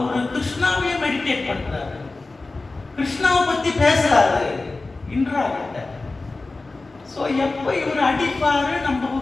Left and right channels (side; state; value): right; quieter; 3.4 dB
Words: கிருஷ்ணாவே மெடிடேட் பண்றாரு, கிருஷ்ணாவை பத்தி பேசுறாரு இந்திரா கிட்ட. ஸோ எப்போ இவர் அடிப்பாரு நம்ம